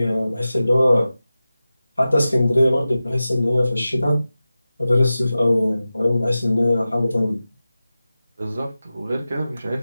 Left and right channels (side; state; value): both; inverted; correlation -0.95